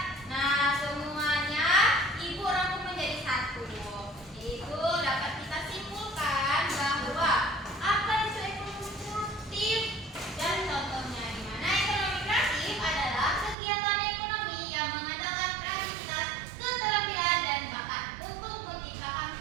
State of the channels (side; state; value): left; drops out; at 13.6 s